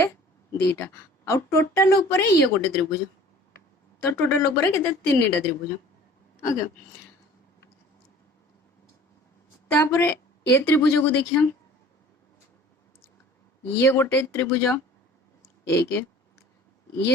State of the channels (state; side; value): normal; both; correlation 0.47